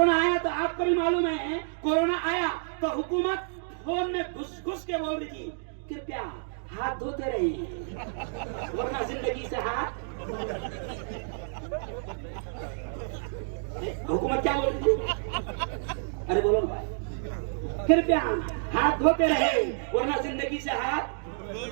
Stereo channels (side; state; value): left; silent; digital silence